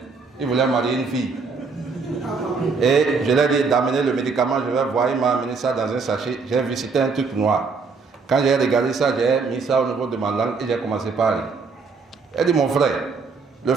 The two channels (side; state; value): left; quieter; 4.7 dB